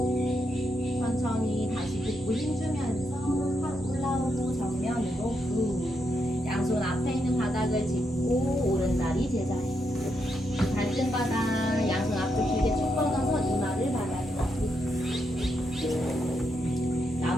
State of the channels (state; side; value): normal; both; correlation 0.81